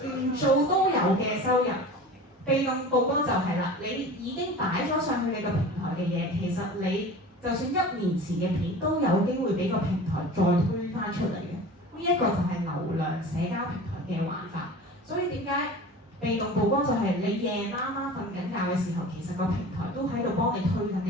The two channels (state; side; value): normal; both; correlation 0.37